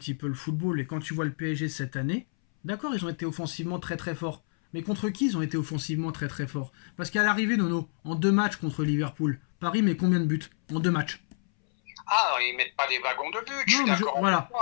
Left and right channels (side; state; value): right; silent; 59 dB below the other